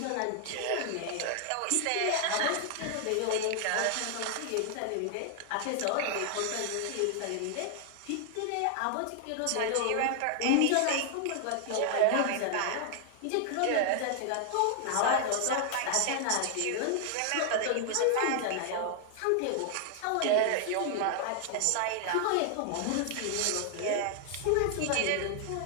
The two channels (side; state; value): both; different; correlation 0.00